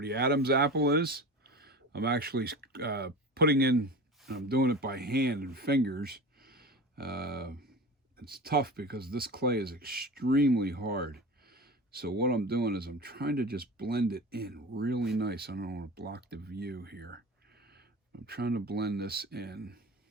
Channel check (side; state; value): both; normal; correlation 0.32